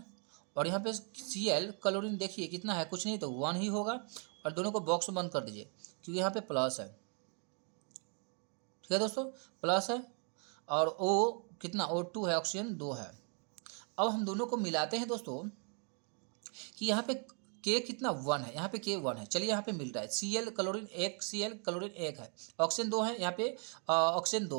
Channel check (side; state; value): left; quieter; 39.9 dB